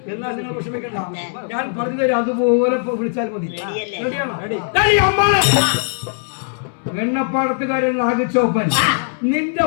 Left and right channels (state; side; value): silent; right; 64 dB below the other